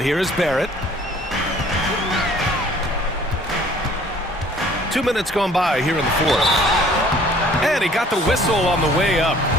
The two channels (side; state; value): both; normal; correlation 0.55